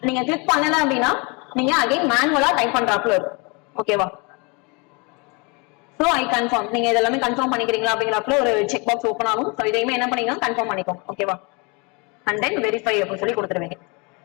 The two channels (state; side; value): quieter; right; 30.2 dB